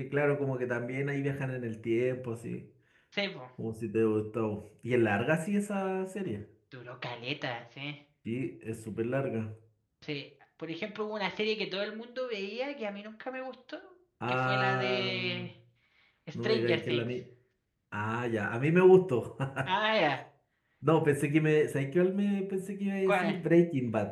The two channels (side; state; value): both; identical; correlation 1.00